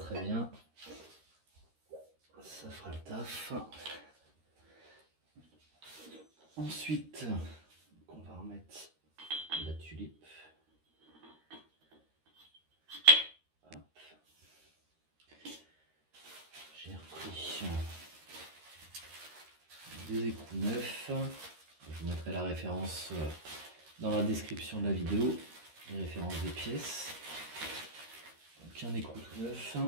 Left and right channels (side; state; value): left; late; 13 ms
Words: bien. Ça fera le taf. Ensuite, on va remettre la tulipe. Hop. J'ai repris des écrous neufs. Je vous mettrai la référence dans la description de la vidéo, les références des pièces. Donc un écrou tout neuf.